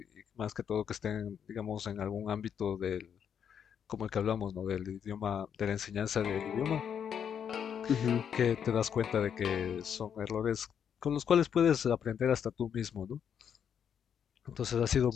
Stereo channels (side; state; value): right; quieter; 8.1 dB